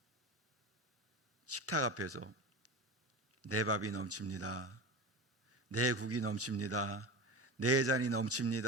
식탁 앞에서 내 밥이 넘칩니다. 내 국이 넘칩니다. 내 잔이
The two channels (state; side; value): normal; both; correlation 0.27